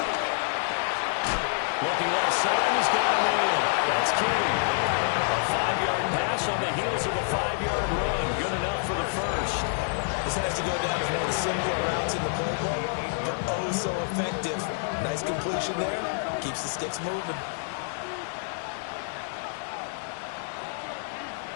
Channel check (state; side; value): silent; right; 60 dB below the other